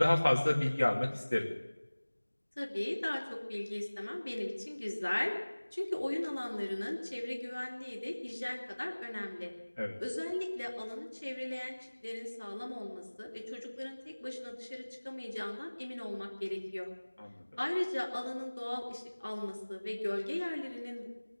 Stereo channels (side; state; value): both; inverted; correlation -1.00